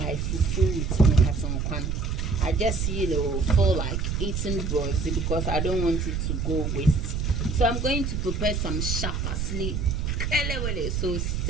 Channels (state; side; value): noise; right; rumble, 1 dB below the sound